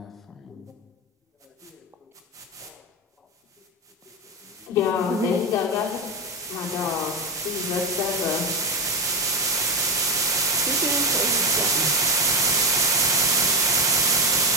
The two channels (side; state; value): both; normal; correlation 0.13